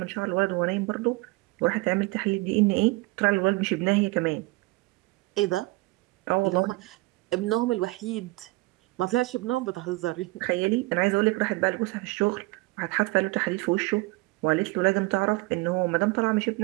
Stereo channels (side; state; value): left; quieter; 22.6 dB